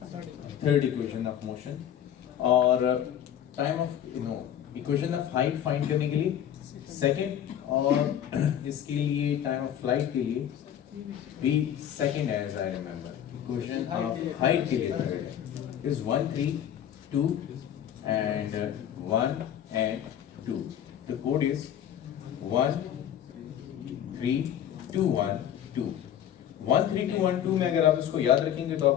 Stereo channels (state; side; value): quieter; right; 10.1 dB